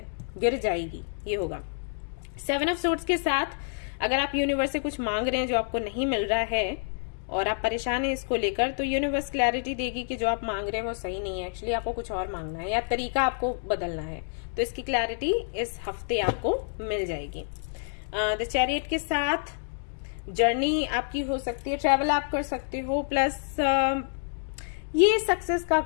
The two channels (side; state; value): right; silent; digital silence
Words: गिर जाएगी, ये होगा। 7 ऑफ सोर्ड्स के साथ अगर आप यूनिवर्स से कुछ मांग रहे हैं जो आपको नहीं मिल रहा है और आप परेशान हैं इसको लेकर, तो यूनिवर्स क्लैरिटी देगी कि जो आप मांग रहे हैं वो सही नहीं है, एक्चुअली आपको कुछ और मांगना है या तरीका आपको बदलना है। तो इसकी क्लैरिटी इस हफ्ते आपको मिल जाएगी। द चैरियट के साथ जर्नी आपकी हो सकती है, ट्रैवल आप कर सकते हो, प्लस ये सक्सेस का